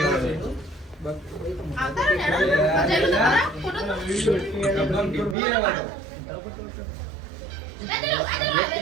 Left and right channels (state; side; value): drops out; left; at 5.4 s